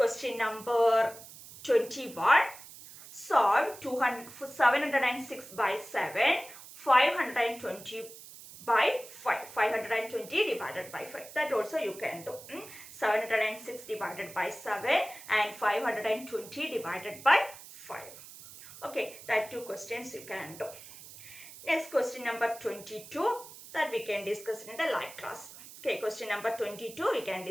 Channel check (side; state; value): right; noise; hiss, 16 dB below the sound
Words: number 21. Solve 706 by 7. 520 by 5. 520 divided by 5. That also you can do. 706 divided by 7 and 520 divided by 5. Okay, that 2 questions you can do. Next question number 22, that we can discuss in the live class. Okay, question number 22 we can